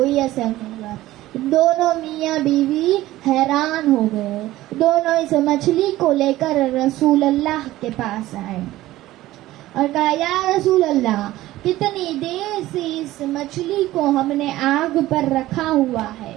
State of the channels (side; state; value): left; quieter; 16.0 dB